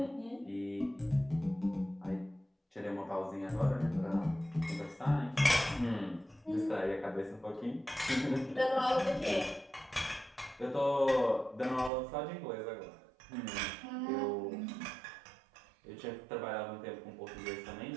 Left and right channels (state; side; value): drops out; left; at 11.9 s